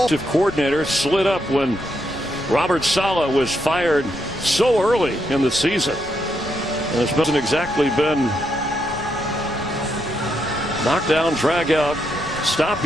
Coordinator slid up when Robert Saleh was fired so early in the season. And this hasn't exactly been knockdown, drag out, stop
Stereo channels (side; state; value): left; noise; rumble, 15 dB below the sound